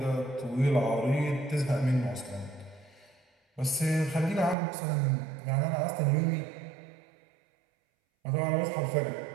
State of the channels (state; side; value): drops out; left; at 4.5 s